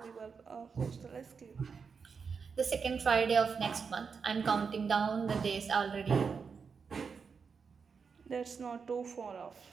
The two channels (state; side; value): quieter; left; 5.7 dB